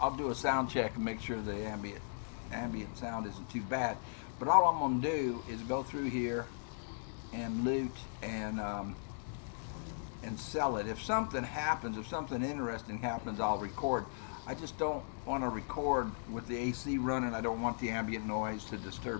I'll do a sound check and make sure the ambient sound isn't too bad. But all I'm gonna do is go through here and loot and sell it. If something happens, if something interesting happens, I'll record. I just don't want to record with the AC running. I don't want the ambient noise to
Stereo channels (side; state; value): right; silent; digital silence